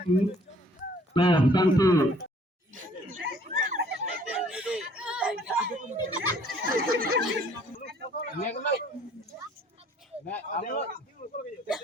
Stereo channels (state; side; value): normal; both; correlation 0.58